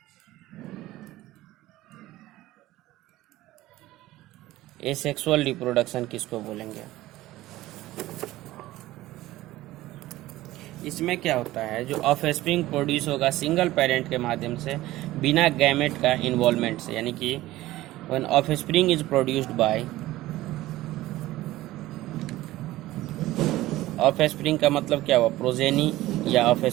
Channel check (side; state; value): left; quieter; 16.6 dB